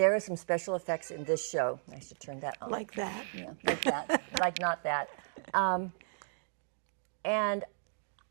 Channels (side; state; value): left; silent; digital silence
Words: are some special effects in this show. I should turn that on. Like that. Yeah, like that. Like not that. And